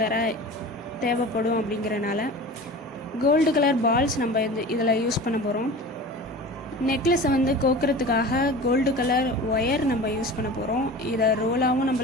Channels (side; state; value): both; normal; correlation 0.36